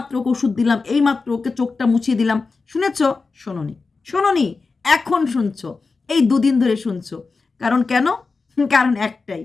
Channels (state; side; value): quieter; right; 4.2 dB